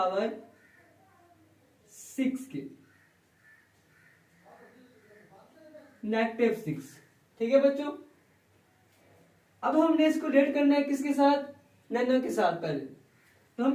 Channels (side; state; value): both; identical; correlation 1.00